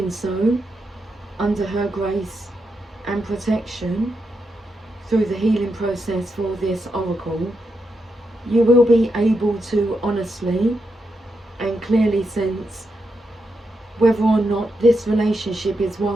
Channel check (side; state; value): both; normal; correlation 0.84